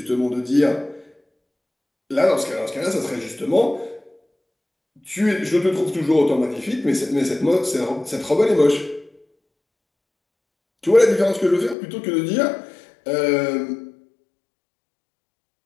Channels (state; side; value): drops out; right; at 11.8 s